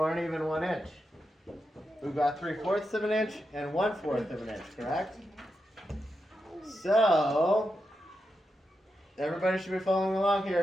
aren't even 1 inch. We've got 3/4 of an inch and 1/4 of an inch, correct? So, everybody should be following along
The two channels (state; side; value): normal; both; correlation 0.87